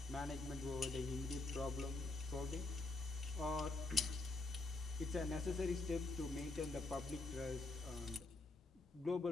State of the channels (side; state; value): right; quieter; 3.2 dB